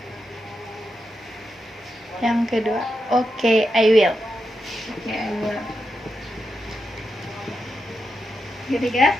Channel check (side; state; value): both; normal; correlation 0.86